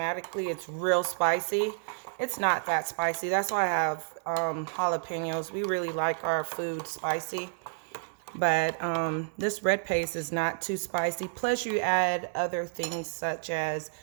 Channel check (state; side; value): silent; left; 58 dB below the other